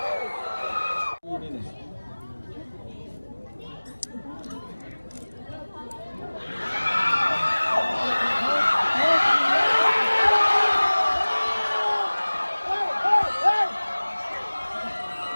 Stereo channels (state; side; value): inverted; both; correlation -1.00